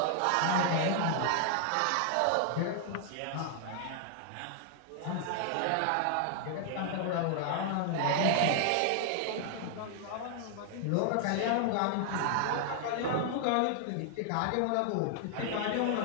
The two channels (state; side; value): different; both; correlation -0.01